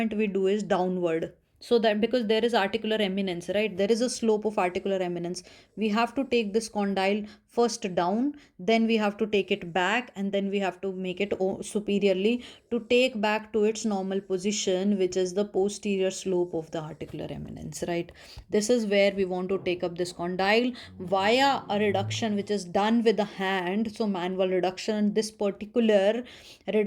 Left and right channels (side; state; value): both; identical; correlation 1.00